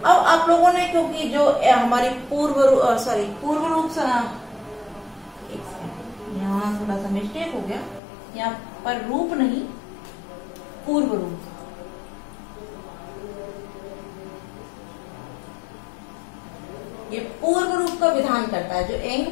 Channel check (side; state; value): right; drops out; at 8.0 s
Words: अब आप लोगों ने, क्योंकि जो हमारी पूर्व रूप से, यहाँ थोड़ा सा मिस्टेक हो गया, यहाँ पर रूप नहीं, पूर्व रूप, ये पूर्व रूप का विधान करता है। जो एंग